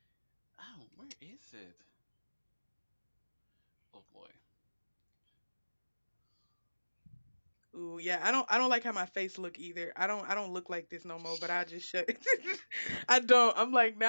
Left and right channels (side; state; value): both; inverted; correlation -1.00